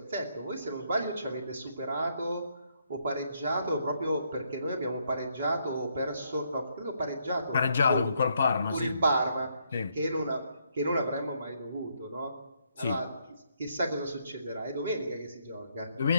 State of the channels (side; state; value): both; inverted; correlation -0.74